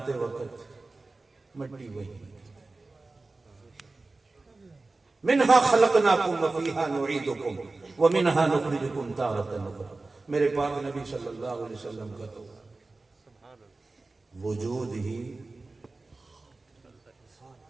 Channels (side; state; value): left; quieter; 3.4 dB